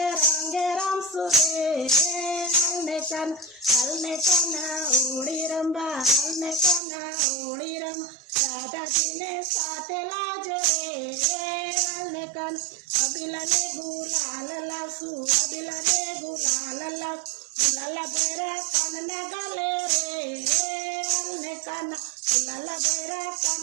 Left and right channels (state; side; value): drops out; left; at 6.8 s